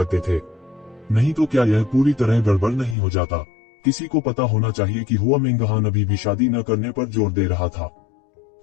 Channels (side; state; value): right; drops out; at 3.0 s